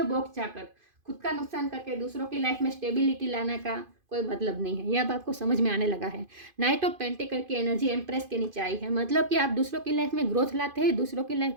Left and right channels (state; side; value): late; left; 2.5 ms